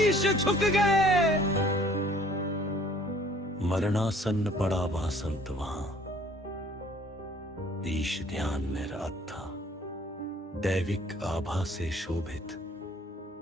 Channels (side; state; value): both; normal; correlation 0.56